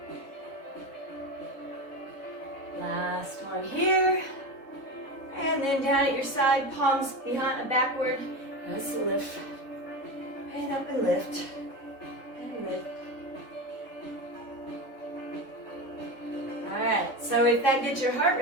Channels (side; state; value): right; late; 3.6 ms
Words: Last one here. And then down at your side, palms behind, backward. Let's lift. And up and lift. And lift. All right, so if that gets your heart